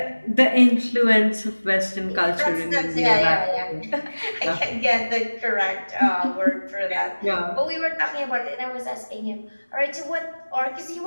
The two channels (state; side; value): inverted; both; correlation -1.00